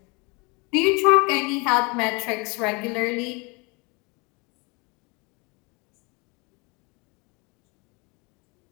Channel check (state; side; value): quieter; right; 29.1 dB